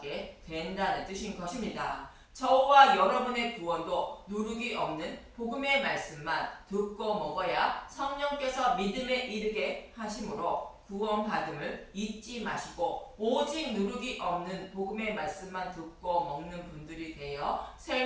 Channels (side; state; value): both; identical; correlation 1.00